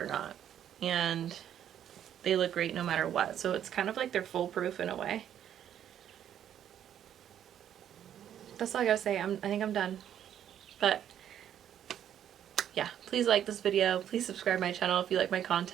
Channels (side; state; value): left; quieter; 10.1 dB